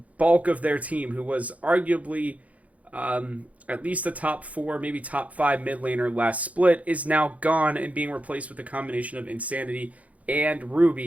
of their team, who was arguably at least a top 4, maybe top 5 mid laner last split, is now gone and being replaced with a combination of Insanity and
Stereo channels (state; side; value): late; left; 0.069 ms